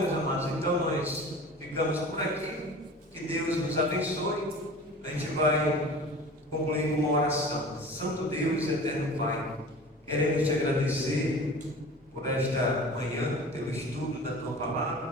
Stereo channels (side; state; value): both; normal; correlation 0.39